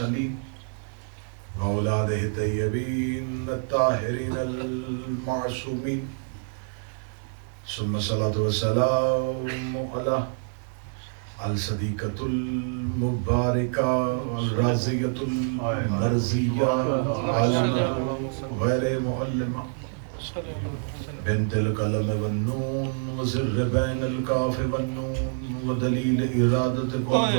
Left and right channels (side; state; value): left; silent; 60 dB below the other